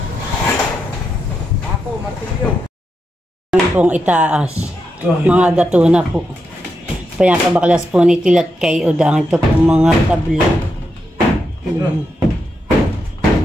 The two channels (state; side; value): normal; both; correlation 0.85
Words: Ako, martilyo. Ang pong itaas. Mga gato na po. Pinapabaklas po ni tilat kay Udang. Ito po mga tabla.